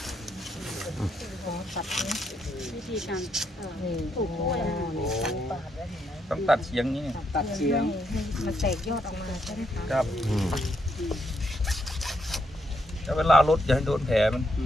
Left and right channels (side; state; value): both; normal; correlation 0.77